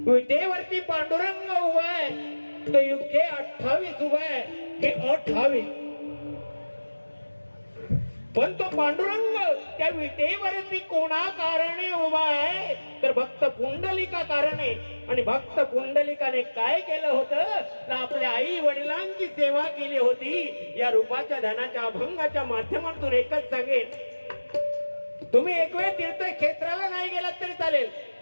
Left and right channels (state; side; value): inverted; both; correlation -1.00